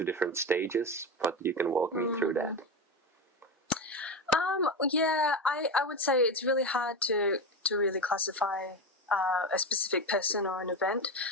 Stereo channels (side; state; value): both; normal; correlation 0.18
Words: different stages, but you can walk me through that. Yeah, I would say it's really hard to really classify a specific person or an event.